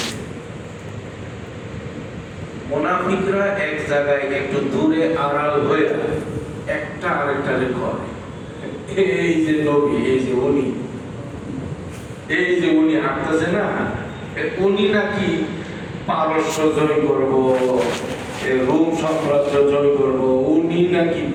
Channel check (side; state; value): both; identical; correlation 1.00